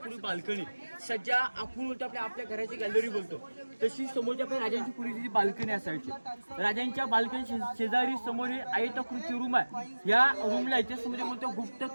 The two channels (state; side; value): inverted; both; correlation -1.00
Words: बाल्कनी, सज्जा आपण बोलतो आपल्या घराची गॅलरी बोलतो, तशी समोरच्या आपल्या राजांची पूर्वीची बाल्कनी असायची. राजांच्या बाल्कनी शेजारी समोर हे आयताकृती रूम आहे. या रूमला इतिहासामध्ये बोलतो गुप्त